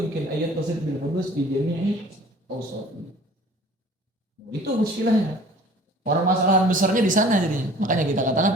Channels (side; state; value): both; normal; correlation 0.49